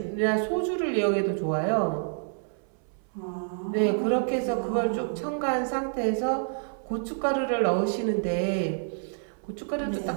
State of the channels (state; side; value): silent; left; 59 dB below the other